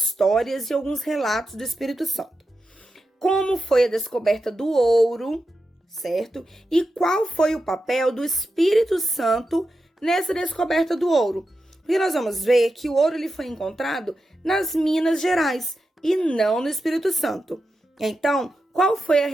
e alguns relatos do Espírito Santo. Como foi a descoberta do ouro, certo? E qual foi o papel do Espírito Santo nessa descoberta do ouro? Porque nós vamos ver que o ouro ele foi encontrado nas Minas Gerais e não no Espírito Santo. Então, qual foi a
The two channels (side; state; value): both; normal; correlation 0.89